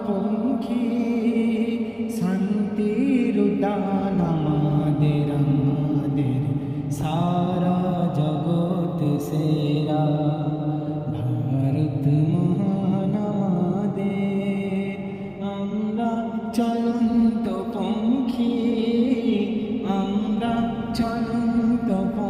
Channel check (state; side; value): identical; both; correlation 1.00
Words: पंखी शांतिर उद्यान आमादेर आमादेर सारा जगत सेरा भारत महान आमादेर आम्रा चलন্ত पंखी आम्रा चलন্ত